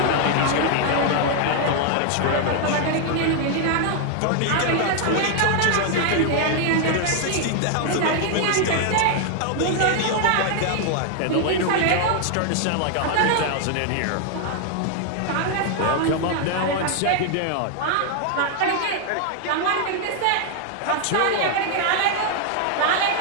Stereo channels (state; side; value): different; both; correlation 0.00